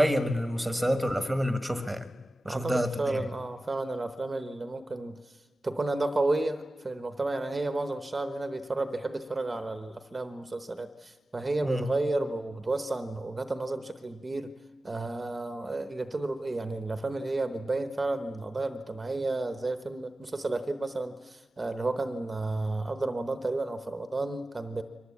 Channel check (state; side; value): normal; both; correlation 0.95